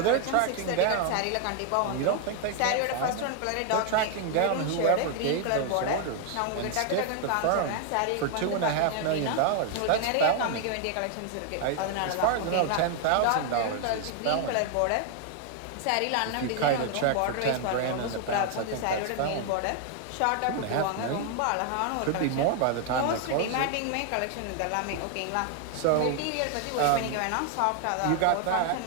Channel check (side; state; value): both; different; correlation 0.00